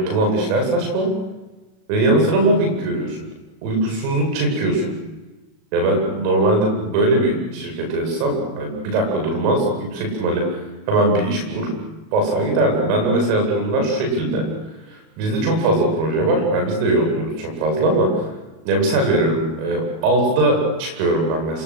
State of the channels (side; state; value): left; late; 37 ms